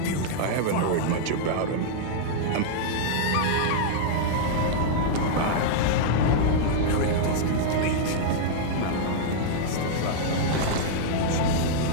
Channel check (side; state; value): both; different; correlation -0.01